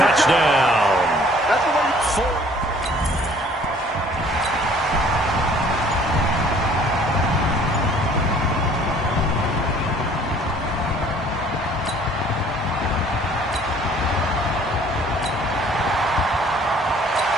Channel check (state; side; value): normal; both; correlation 0.55